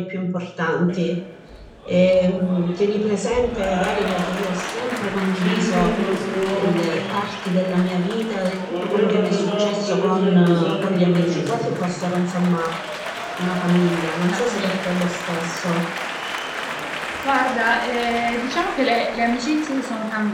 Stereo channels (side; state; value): both; identical; correlation 1.00